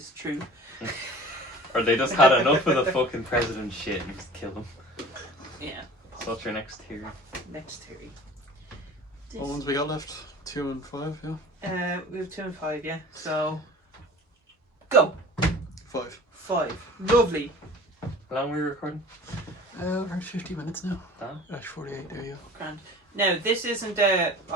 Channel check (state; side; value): normal; both; correlation 0.43